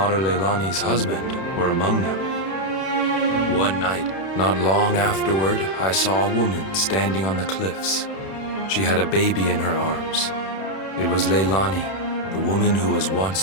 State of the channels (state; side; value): late; right; 31 ms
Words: Leilani's husband were among them. One night, not long afterward, I saw a woman standing on the cliffs. She had a baby in her arms. It was Leilani, the woman who was